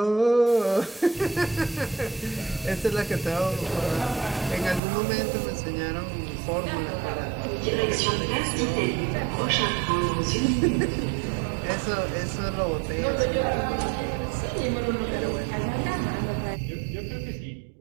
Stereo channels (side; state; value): left; drops out; at 4.8 s